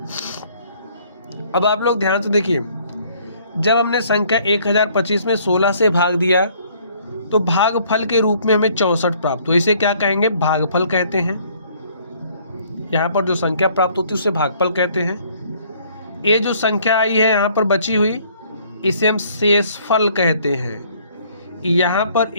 अब आप लोग ध्यान से देखिए, जब हमने संख्या 1025 में 16 से भाग दिया तो भागफल के रूप में हमें 64 प्राप्त हुआ। इसे क्या कहेंगे? भागफल कहते हैं। यहाँ पर जो संख्या प्राप्त होती है उसे भागफल कहते हैं। ये जो संख्या आई है यहाँ पर बची हुई, इसे हम शेषफल कहते हैं। यहाँ पर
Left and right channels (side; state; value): both; inverted; correlation -0.61